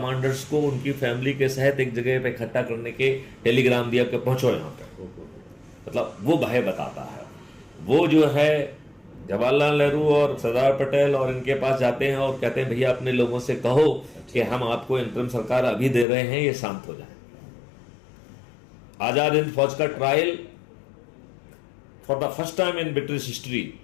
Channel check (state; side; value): drops out; right; at 16.1 s